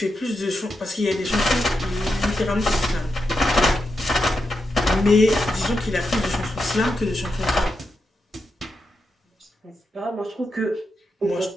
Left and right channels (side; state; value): both; normal; correlation 0.86